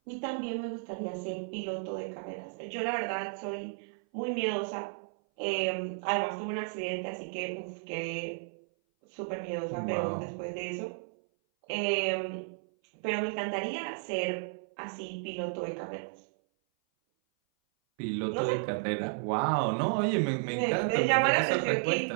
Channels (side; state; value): left; silent; 56 dB below the other